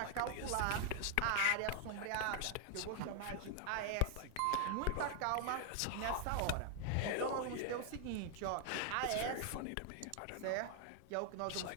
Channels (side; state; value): both; different; correlation 0.00